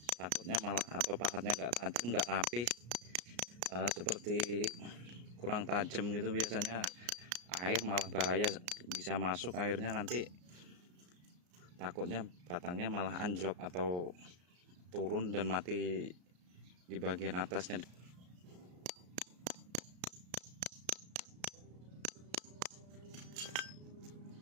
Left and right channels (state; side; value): late; left; 34 ms